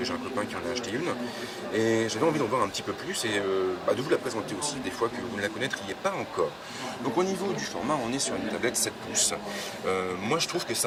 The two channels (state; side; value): identical; both; correlation 1.00